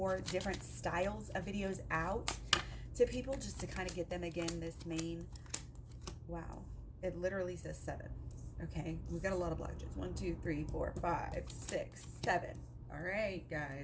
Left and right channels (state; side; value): identical; both; correlation 1.00